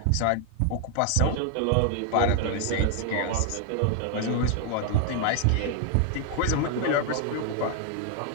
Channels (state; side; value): different; both; correlation 0.00